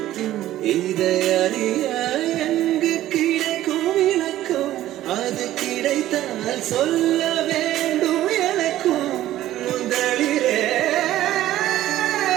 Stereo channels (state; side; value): quieter; left; 14.0 dB